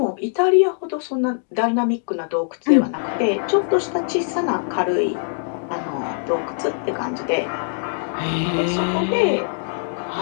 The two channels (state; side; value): silent; right; digital silence